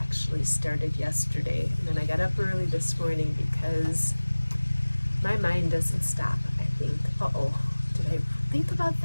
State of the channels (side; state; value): both; inverted; correlation -1.00